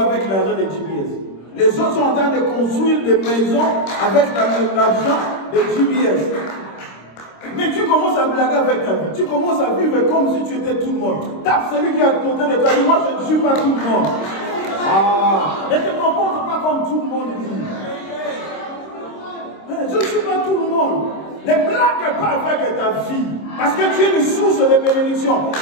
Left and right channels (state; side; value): late; right; 26 ms